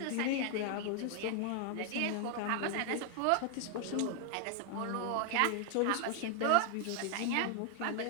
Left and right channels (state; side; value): different; both; correlation 0.00